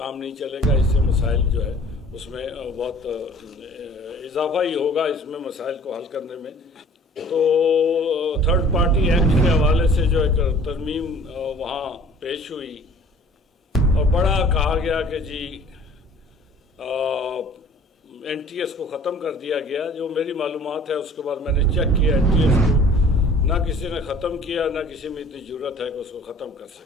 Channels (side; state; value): both; normal; correlation 0.50